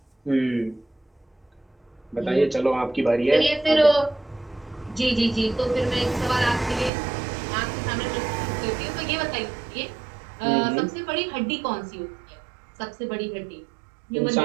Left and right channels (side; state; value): left; drops out; at 6.9 s